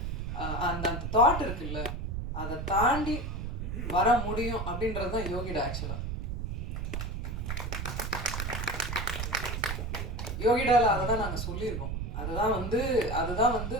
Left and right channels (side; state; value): right; noise; rumble, 3 dB below the sound